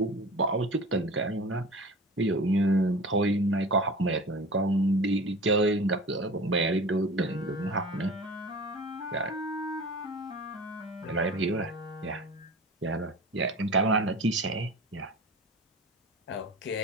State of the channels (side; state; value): both; normal; correlation 0.36